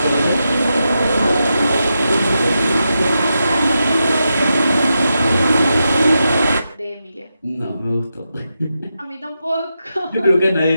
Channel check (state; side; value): inverted; both; correlation -0.87